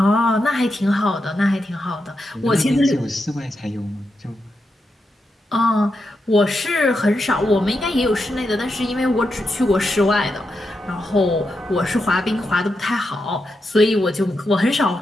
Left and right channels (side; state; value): both; normal; correlation 0.86